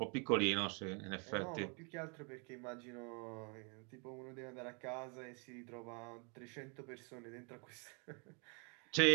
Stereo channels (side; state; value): left; quieter; 35.3 dB